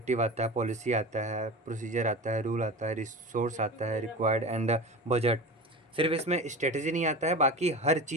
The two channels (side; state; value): both; normal; correlation 0.30